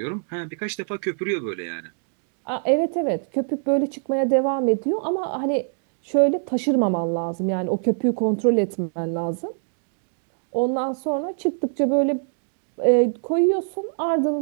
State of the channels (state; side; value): silent; left; digital silence